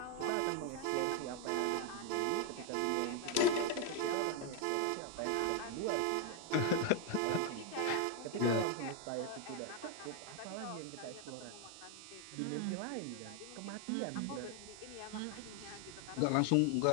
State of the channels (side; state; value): both; different; correlation 0.01